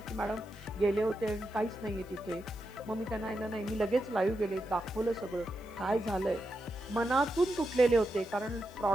की मॅडम गेले होते आणि काहीच नाहीये तिथे. मग मी त्यांना नाही, मी लगेच लाईव्ह गेले, दाखवलं सगळं काय झालंय. मनातून तुटलेले होते, कारण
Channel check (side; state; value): left; noise; hiss, 27 dB below the sound